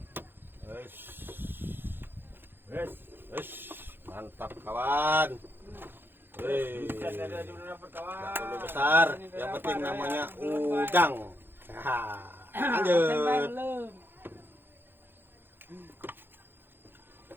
Wes. Wes. Mantap kawan. Wih. Ada dulu dapat kawan. Nggak perlu besar, yang penting namanya udang. Lanjut.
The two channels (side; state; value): left; late; 0.10 ms